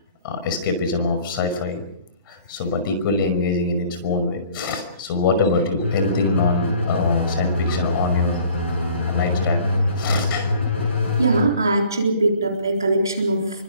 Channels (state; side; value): inverted; both; correlation -0.53